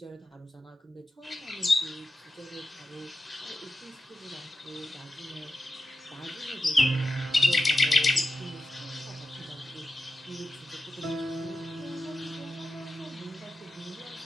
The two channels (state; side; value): normal; both; correlation 0.91